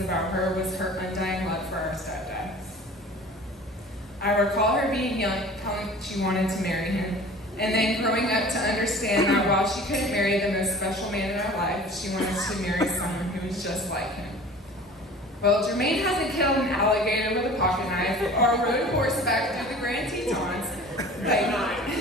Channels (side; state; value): both; normal; correlation 0.43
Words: about her was her undying love for our stepdad. I recall her being young, telling she wanted to marry him, and then growing up to understand that while she couldn't marry the most special man in her life, she wanted to marry someone who was just like him. Well, Jermaine hasn't killed an alligator with a pocket knife or rode horseback through the Grand Tetons,